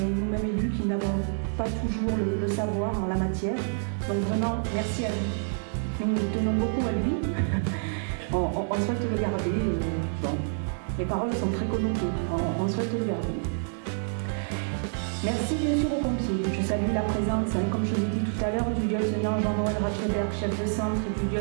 nous-mêmes élus qui n'avons pas toujours le savoir en la matière. Donc vraiment, merci à lui. Nous tenons beaucoup à lui. On souhaite le garder. Bon, les paroles sont très connotées. On souhaite le garder. Merci bien sûr aux pompiers. Je salue la présence, comme je l'ai dit tout à l'heure, du lieutenant Jean-Noël Ratcheberg, chef de centre, et du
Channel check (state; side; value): silent; left; digital silence